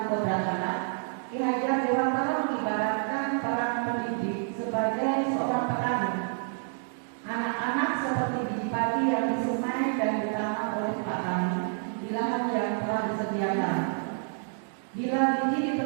kodrat anak, Ki Hajar Dewantara mengibaratkan peran pendidik sebagai seorang petani. Anak-anak seperti biji padi yang disemai dan ditanam oleh petani di lahan yang telah disediakan. Bila biji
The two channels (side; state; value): left; silent; 59 dB below the other